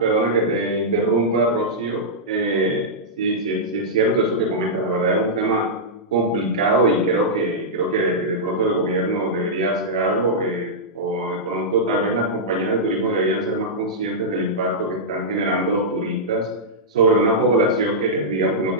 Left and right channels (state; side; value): normal; both; correlation -0.11